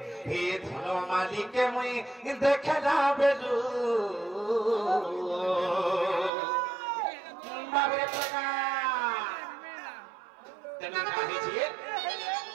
এ ধন মালিকে মুই দেখে না বেলু বাবরে টাকা তেমন কাহিছি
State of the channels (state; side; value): drops out; left; at 6.3 s